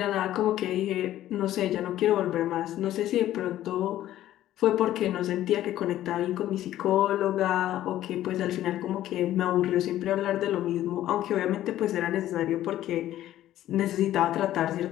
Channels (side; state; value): right; quieter; 13.3 dB